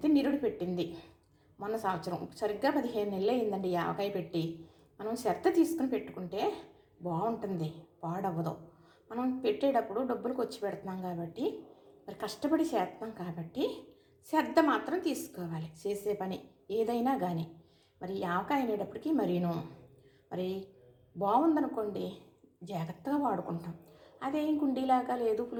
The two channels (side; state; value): both; identical; correlation 1.00